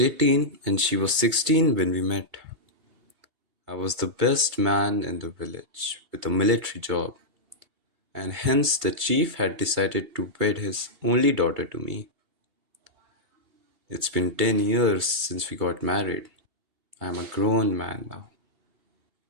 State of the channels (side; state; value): left; late; 2.3 ms